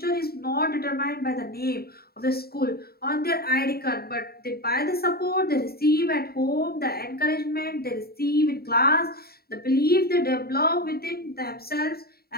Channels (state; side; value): late; right; 0.45 ms